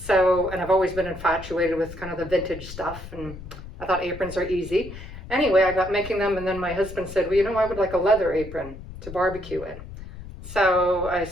and I've always been infatuated with kind of the vintage stuff, and I thought aprons are easy. Anyway, I got making them, and then my husband said, well, I would like a leather apron to barbecue in. So I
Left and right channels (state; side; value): noise; left; rumble, 13 dB below the sound